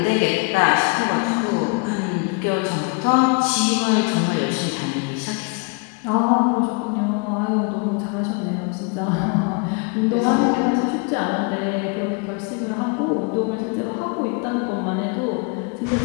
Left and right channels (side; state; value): right; quieter; 31.6 dB